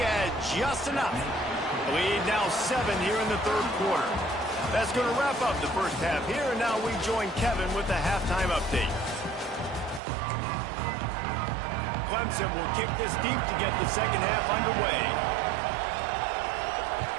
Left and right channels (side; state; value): left; drops out; at 10.0 s